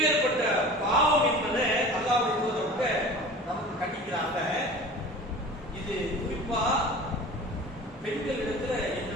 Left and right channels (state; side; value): normal; both; correlation 0.39